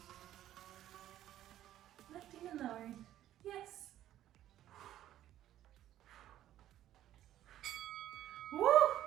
Lifting and lowering. Yes. Woo!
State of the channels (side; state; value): left; quieter; 12.6 dB